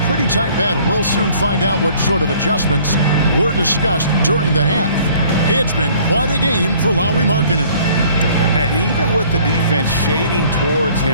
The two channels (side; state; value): both; inverted; correlation -0.55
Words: pretty tight battle. We'll soon find out what sort of adjustments were discussed during the half. It's been quite a game for Lauri Markkanen. And even with the defense shading towards